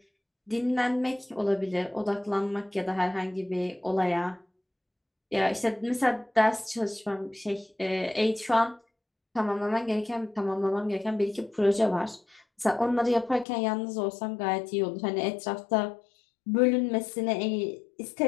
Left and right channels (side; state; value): right; drops out; at 13.5 s